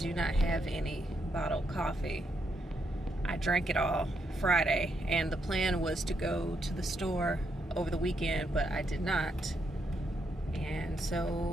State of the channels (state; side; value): normal; both; correlation 0.79